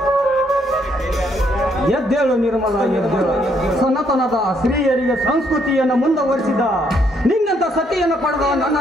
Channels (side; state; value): both; normal; correlation 0.71